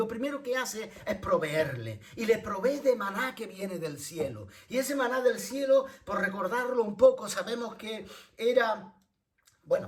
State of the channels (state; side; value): identical; both; correlation 1.00